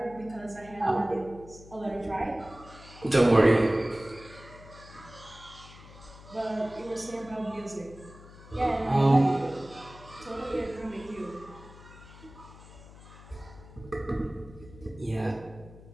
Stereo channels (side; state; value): left; noise; hum, 19 dB below the sound